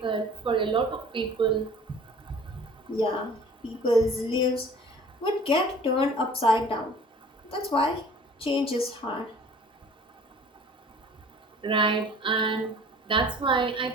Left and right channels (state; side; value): normal; both; correlation 0.48